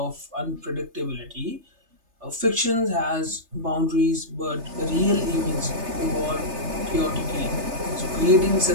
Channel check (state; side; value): late; left; 3.3 ms